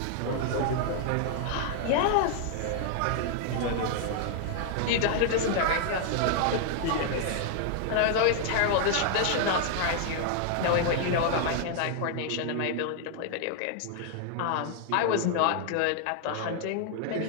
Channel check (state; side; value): different; both; correlation 0.00